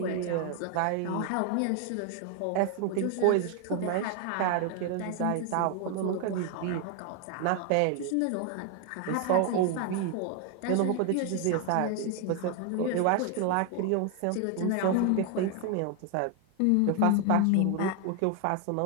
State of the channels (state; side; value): different; both; correlation 0.00